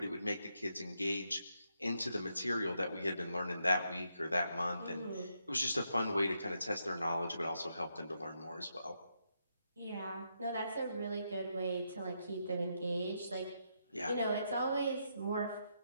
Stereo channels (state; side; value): inverted; both; correlation -0.80